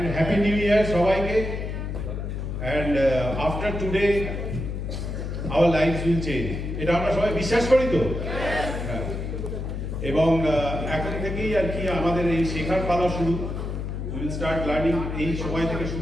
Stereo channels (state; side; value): noise; left; hum, 4 dB below the sound